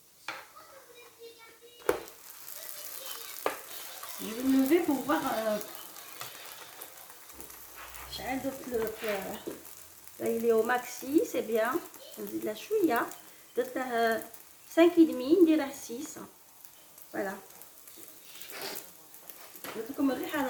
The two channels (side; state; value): both; identical; correlation 1.00